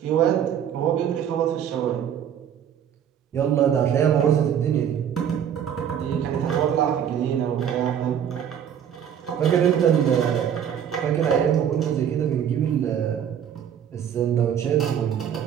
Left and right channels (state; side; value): quieter; left; 9.0 dB